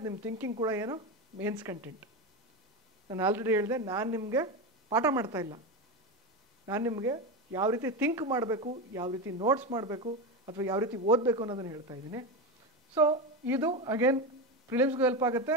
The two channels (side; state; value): both; normal; correlation 0.17